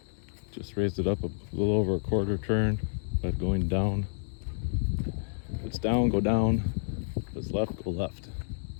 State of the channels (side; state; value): right; silent; digital silence